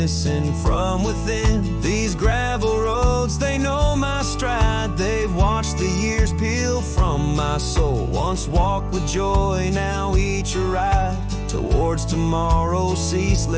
from within. These gravel roads, they know my stride, they've watched the years peel from my soul. Once walked with joy, now each a ride towards tomorrow's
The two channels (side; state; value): both; identical; correlation 1.00